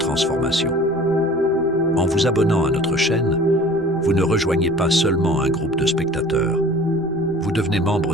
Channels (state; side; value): noise; right; rumble, 22 dB below the sound